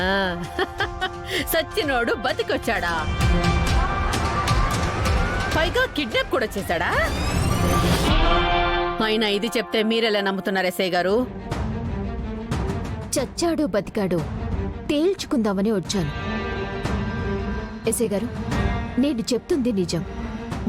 సచ్చినోడు బతికొచ్చాడా? పైగా కిడ్నాప్ కూడా చేశాడా? అయినా ఇది చెప్తే మీరెలా నమ్ముతున్నారు ఎస్ఐ గారు? చచ్చాడో బతికాడో తేల్చుకుందామని వచ్చాను. ఎస్ఐ గారు, నేను చెప్తుంది నిజం.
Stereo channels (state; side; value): identical; both; correlation 1.00